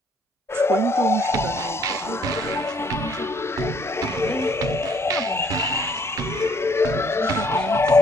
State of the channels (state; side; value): normal; both; correlation 0.64